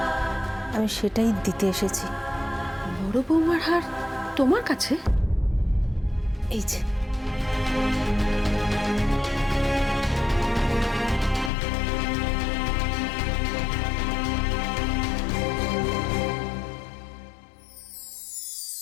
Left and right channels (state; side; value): drops out; right; at 11.5 s